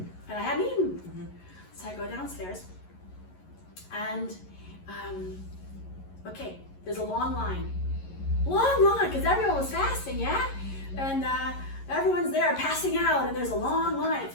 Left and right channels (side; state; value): right; late; 11 ms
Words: And I hadn't eaten. So I go downstairs and, okay, there's a long line. Long line, because everyone was fasting, yeah? And everyone's there passing out and there's a long line,